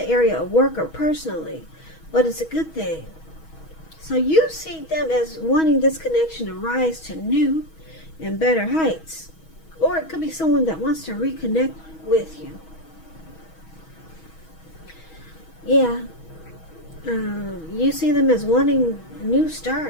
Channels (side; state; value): right; late; 6.2 ms